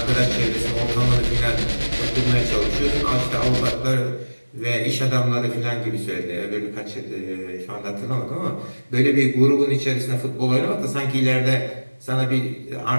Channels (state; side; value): inverted; both; correlation -1.00